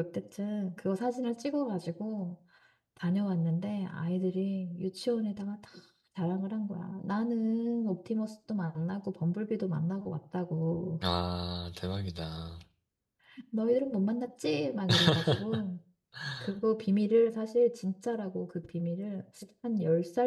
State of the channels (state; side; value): identical; both; correlation 1.00